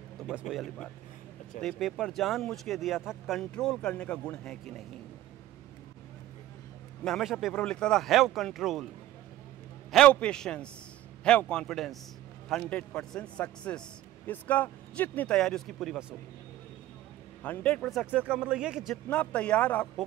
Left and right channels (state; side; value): quieter; left; 14.4 dB